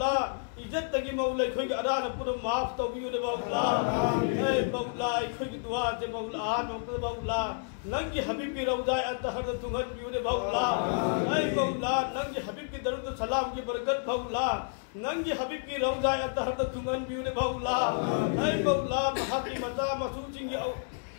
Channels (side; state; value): right; silent; 58 dB below the other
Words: इज्जत की मौला कोई आरान पुरो माफ तो भी मौला। ऐ मौला कोई दुआ जे मौला आन मौला नंगी हबीब की रौजा अतहर तुंगन भी मौला। ऐ मौला नंगी हबीब की दरुद सलाम की बरकत मौला नंगी हबीब की रौजा अतहर तुंगन भी मौला। ऐ मौला महा की मता मसूचिंग